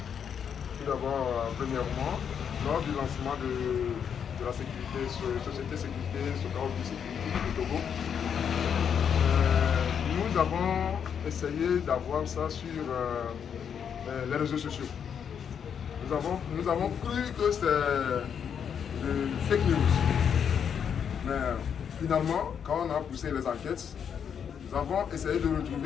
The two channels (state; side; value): quieter; right; 7.7 dB